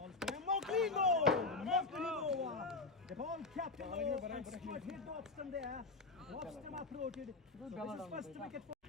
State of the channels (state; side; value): quieter; right; 3.6 dB